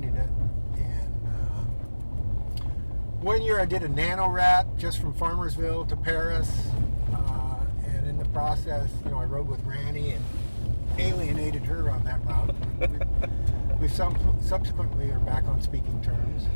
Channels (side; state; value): both; inverted; correlation -1.00